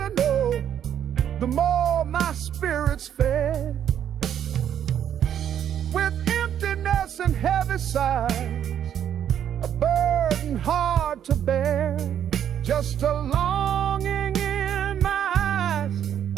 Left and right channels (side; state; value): left; quieter; 9.6 dB